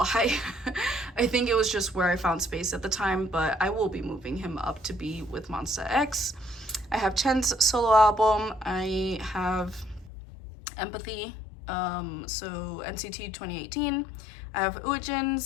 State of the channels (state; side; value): drops out; right; at 10.1 s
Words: I think it was just where I found space at the time, but I will be moving him up to be with Monsta X. I have Chen's solo album. I have Empathy, so NCT 2018. I have